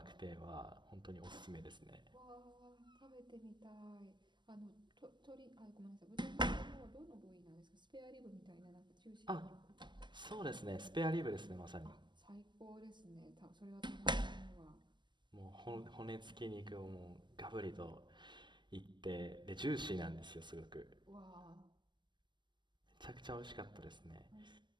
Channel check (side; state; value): left; late; 0.22 ms